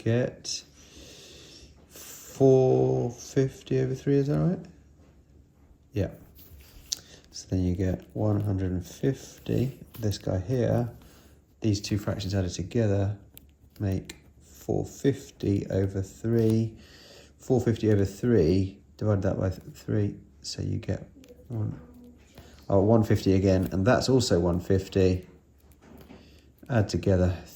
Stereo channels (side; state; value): both; identical; correlation 1.00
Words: 450 over 3, is that right? Yeah. So then you get 150, this guy here, these two fractions added together make 450 over 3. 450 over 3, divide that by 3, so you get 150 again, and that's also 150. Add together